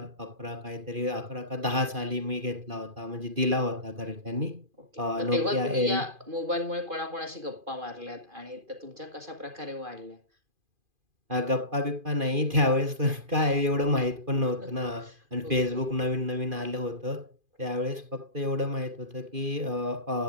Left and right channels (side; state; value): left; late; 2.4 ms